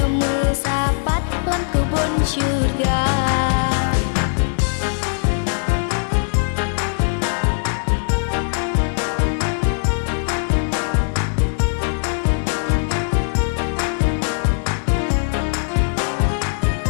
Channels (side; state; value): right; silent; digital silence